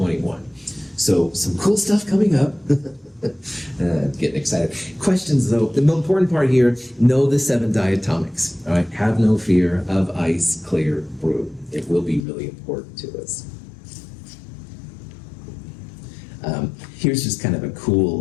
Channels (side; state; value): right; drops out; at 12.2 s